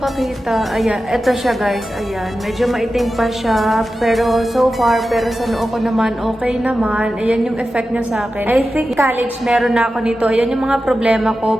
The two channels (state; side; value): normal; both; correlation 0.93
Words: Ayan, eto siya guys. Ayan, medyo maitim pa siya. Pero so far, pero sa noo ko naman, okay naman. Ayan yung effect niya sa akin. I think college meron na ako nito. Ayan yung mga problema